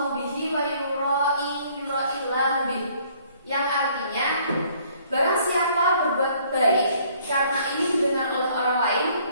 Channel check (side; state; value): both; inverted; correlation -0.60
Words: bihi wa yura'illahu bihi, yang artinya barang siapa berbuat baik karena ini didengar oleh orang lain,